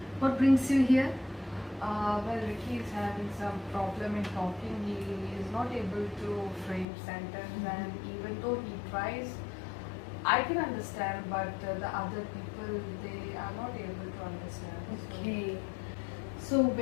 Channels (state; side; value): drops out; right; at 6.9 s